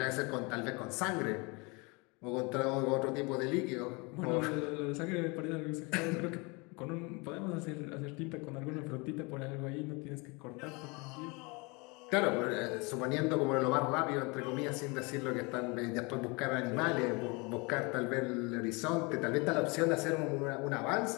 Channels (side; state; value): right; quieter; 28.3 dB